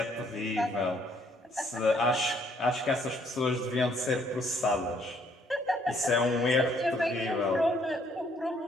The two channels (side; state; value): both; normal; correlation 0.66